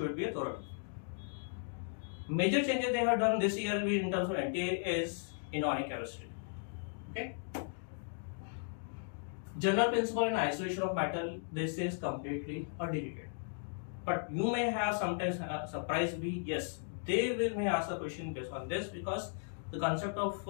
be a thorough. Major changes they have done this year will be in terms of NTA is inorganic chemistry. Okay. General principle in isolation of matter, this is completely deleted. But you may have sometimes surprise be yes, they may ask a question based on this, because the concept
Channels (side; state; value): right; silent; digital silence